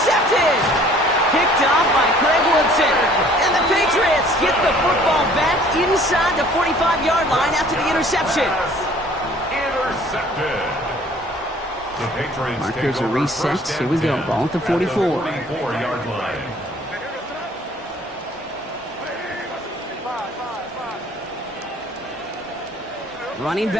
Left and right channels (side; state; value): both; normal; correlation 0.54